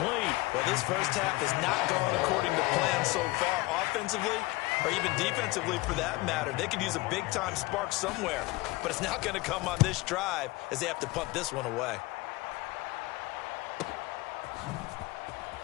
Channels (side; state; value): right; quieter; 21.1 dB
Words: Well, this first half has not gone according to plan so far offensively or even defensively for that matter. They could use a big-time spark somewhere, but it's not going to come on this drive as they have to punt this one away.